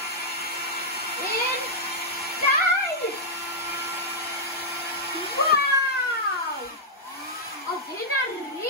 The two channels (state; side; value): normal; both; correlation -0.06